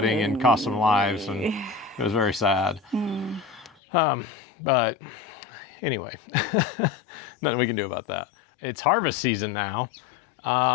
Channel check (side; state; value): right; drops out; at 3.8 s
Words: and cost some lives, and it was very sad. But anyway, nothing we can do about that. It's harvest season now,